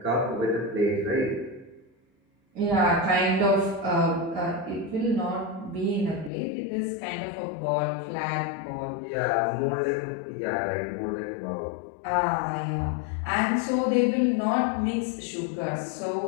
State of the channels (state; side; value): drops out; right; at 6.3 s